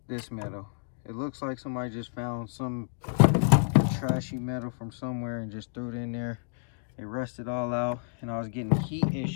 this metal. It looks like somebody just found some trashy metal from somewhere and just threw it in there. It rusted all out, and I was getting heat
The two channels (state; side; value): silent; right; digital silence